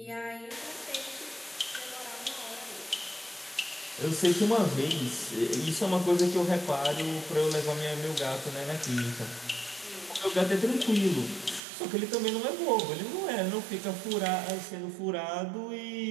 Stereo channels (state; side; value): drops out; left; at 11.6 s